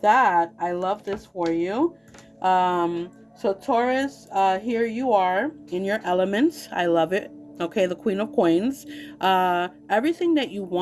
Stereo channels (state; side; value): identical; both; correlation 1.00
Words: that, I love this for you. So Taurus, here you are in your elements. I love it. Okay, the Queen of Coins. Everything that you